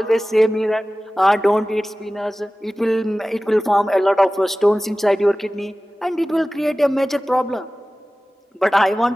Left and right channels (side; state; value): both; normal; correlation 0.97